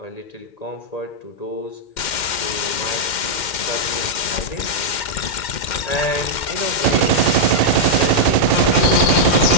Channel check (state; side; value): late; right; 2.1 ms